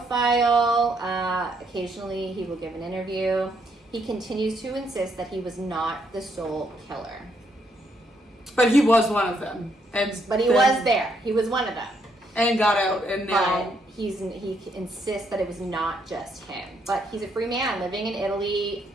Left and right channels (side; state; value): both; normal; correlation 0.74